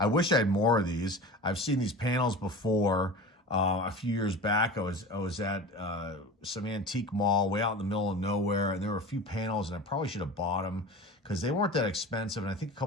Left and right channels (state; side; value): normal; both; correlation 0.34